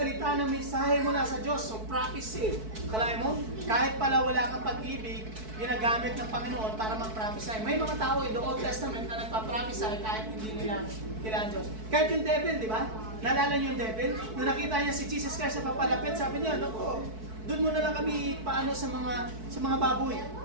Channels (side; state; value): left; late; 4.6 ms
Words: ng mensahe mula sa Diyos, so prophecy. Kalahin mo, kahit pala wala kang pag-ibig, ginagamit ng Panginoon para mag-prophesy. May mga tao in the Old Testament na nagpa-prophesy kahit hindi nila kailangan Diyos. Kahit yung devil, di ba? Naalala niyo yung devil? Nung nakita niya si Jesus Christ sa papalapit, sabi niya, naku, doon mo na lang kami paano sa mga baboy.